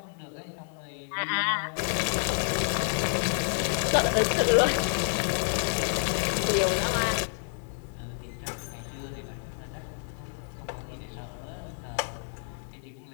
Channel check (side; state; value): right; silent; 58 dB below the other